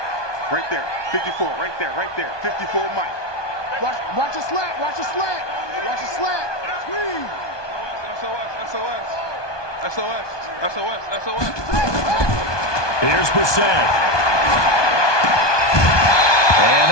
Right there, 54, right there, 54, Mike. Watch a slant, watch a slant, watch a slant. Squeeze. SOS. Here's Brissett. And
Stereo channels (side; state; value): right; late; 1.2 ms